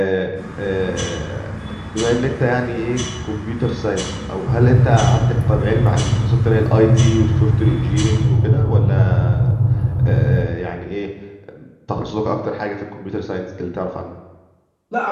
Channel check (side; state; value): both; identical; correlation 1.00